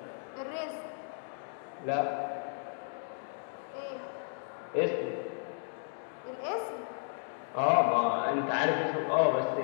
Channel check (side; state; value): right; silent; digital silence